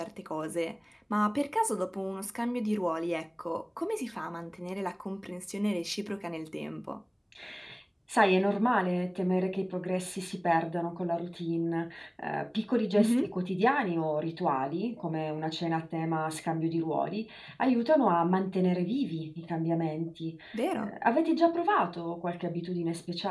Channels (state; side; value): identical; both; correlation 1.00